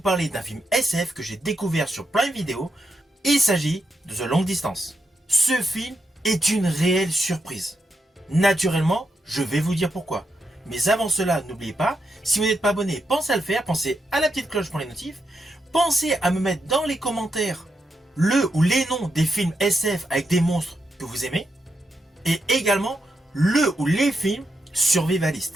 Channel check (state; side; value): normal; both; correlation 0.83